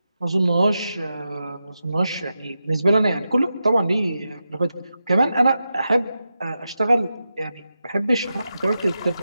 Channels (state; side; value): inverted; both; correlation -0.89